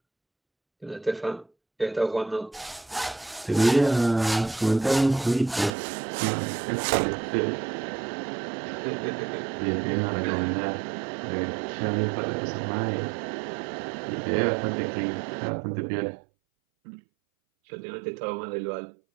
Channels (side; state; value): left; drops out; at 5.8 s